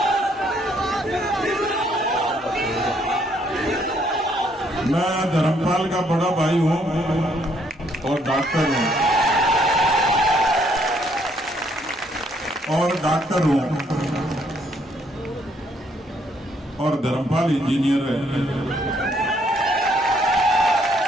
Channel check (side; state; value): both; normal; correlation 0.69